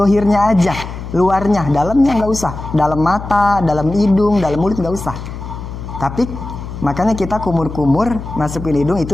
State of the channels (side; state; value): left; noise; hum, 9 dB below the sound